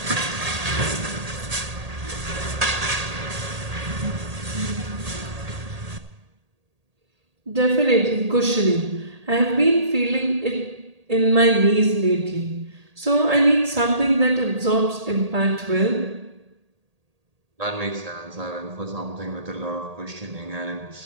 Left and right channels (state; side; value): late; left; 1.8 ms